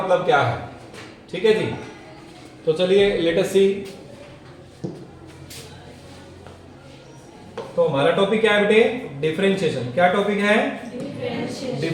क्या है। ठीक है जी? तो चलिए लेट अस सी। तो हमारा टॉपिक क्या है बेटे? डिफरेंशिएशन। क्या टॉपिक है?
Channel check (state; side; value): identical; both; correlation 1.00